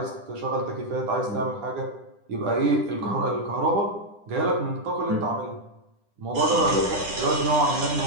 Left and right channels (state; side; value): late; left; 9.9 ms